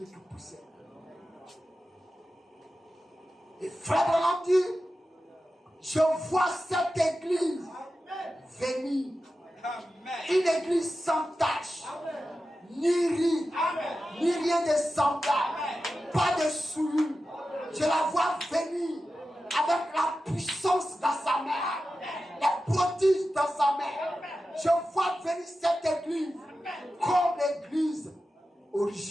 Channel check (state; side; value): normal; both; correlation 0.92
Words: qui poussait. Et Frère Branham dit, je vois cette église venir. Une église sans tache, ni riz, ni rien de semblable, pas de souillure. Je la vois venir avec la puissance dans sa main, les prodiges dans sa main. Je vois venir cette église comme l'église